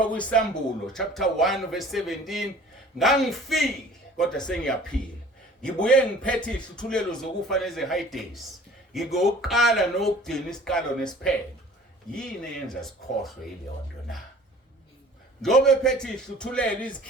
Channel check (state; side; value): normal; both; correlation 0.48